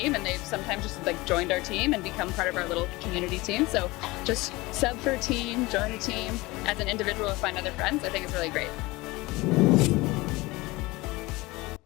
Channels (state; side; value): quieter; right; 21.7 dB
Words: and they've sometimes just like joined our team and become part of our little community team. So just sub for a team, join a team. As an individual, find other friends. I think it's really great.